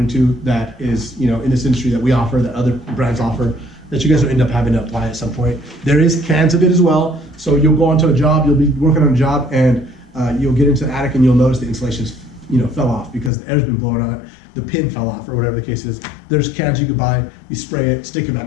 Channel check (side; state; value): right; drops out; at 13.3 s